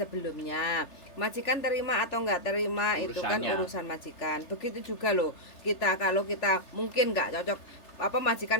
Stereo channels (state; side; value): late; right; 3.4 ms